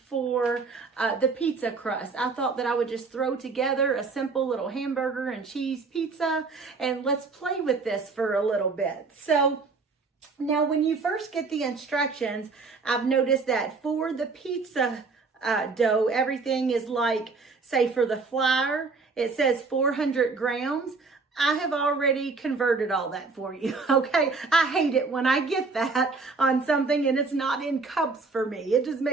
for the pizza crust. I thought that I would just throw together a simple little hamburger and cheese pizza, and let's play with this for a little bit. So now when you first get the instructions, I've noticed that for the pizza dough, everything is like, say for the flour, it says 400 grams. I have already converted all that for you, okay? I hate it when I get that on something and it's not in cups for me. It just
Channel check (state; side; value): quieter; left; 4.3 dB